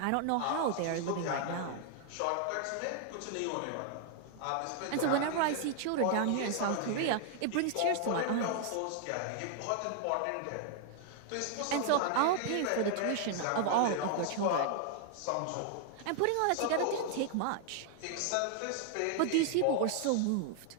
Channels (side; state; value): both; different; correlation 0.00